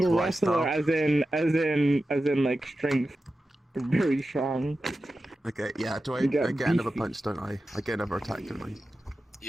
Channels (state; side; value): normal; both; correlation 0.93